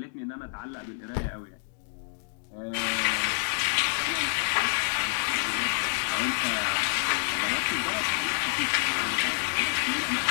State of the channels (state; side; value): silent; right; digital silence